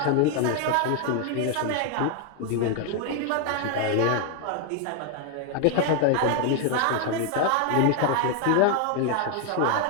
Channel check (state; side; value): different; both; correlation 0.00